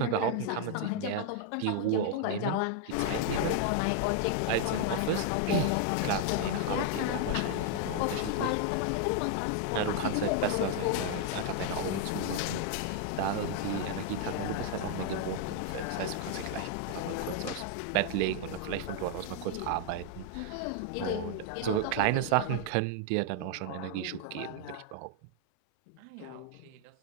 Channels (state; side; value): different; both; correlation 0.00